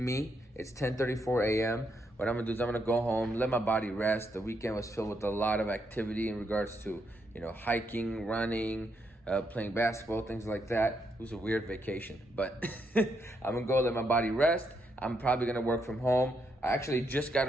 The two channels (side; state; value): both; normal; correlation 0.78